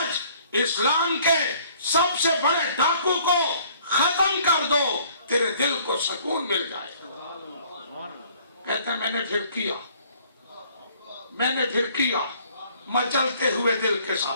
اسلام کے سب سے بڑے ڈاکو کو ختم کر دو، تیرے دل کو سکون مل جائے گا۔ کہتے میں نے پھر کیا مچلتے ہوئے دل کے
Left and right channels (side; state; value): both; inverted; correlation -0.58